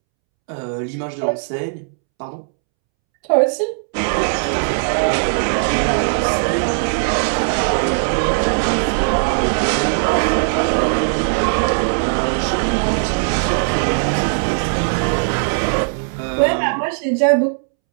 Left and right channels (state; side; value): silent; left; 67 dB below the other